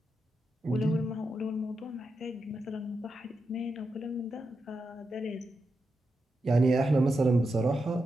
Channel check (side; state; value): both; normal; correlation 0.87